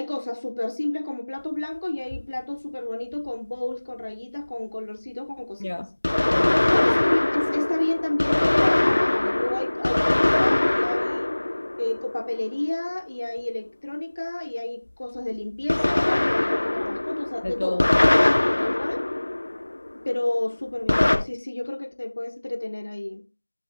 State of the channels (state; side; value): inverted; both; correlation -1.00